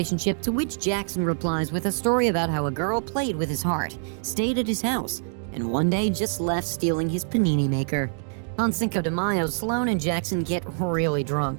to which Jackson replies with a story about how a girl played with his heart, stayed at his house, and one day just left stealing his panini maker. On Cinco de Mayo, Sloane and Jackson get really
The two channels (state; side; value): silent; left; digital silence